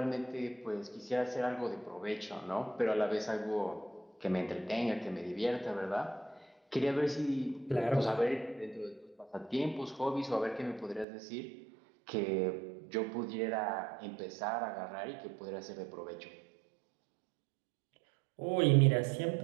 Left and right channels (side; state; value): left; drops out; at 11.1 s